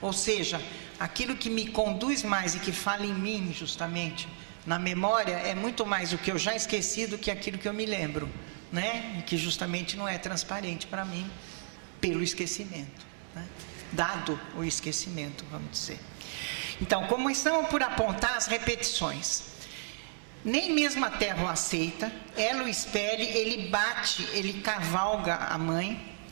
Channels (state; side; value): silent; left; 56 dB below the other